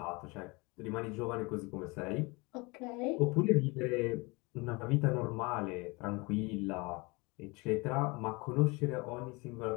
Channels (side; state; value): right; quieter; 26.5 dB